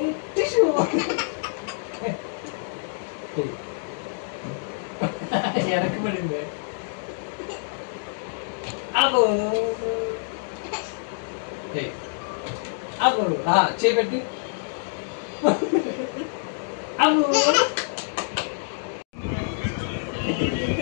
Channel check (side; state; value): right; silent; digital silence